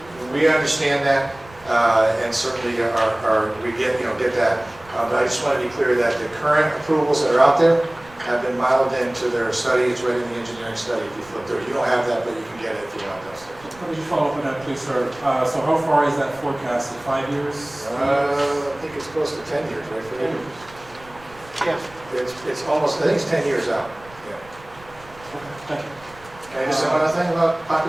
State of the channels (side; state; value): right; noise; rumble, 23 dB below the sound